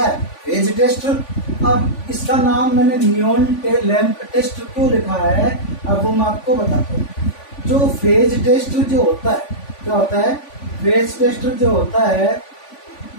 है, फेज टेस्टर। अब इसका नाम मैंने नियॉन लैंप टेस्टर क्यों लिखा है, अब वो मैं आपको बताता हूँ। जो फेज टेस्टर जो होता है, क्या होता है, फेज टेस्टर जो होता है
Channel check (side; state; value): right; late; 3.5 ms